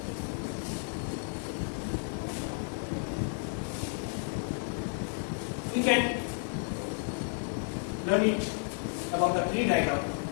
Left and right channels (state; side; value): silent; right; 56 dB below the other